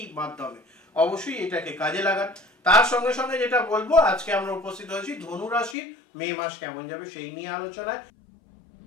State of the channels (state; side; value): drops out; right; at 5.8 s